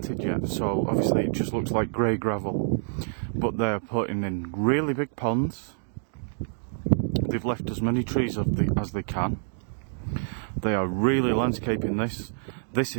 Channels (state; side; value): silent; left; digital silence